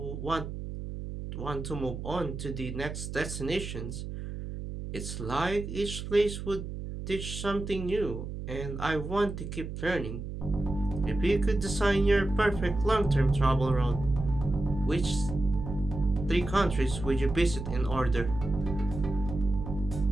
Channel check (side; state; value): right; noise; hum, 7 dB below the sound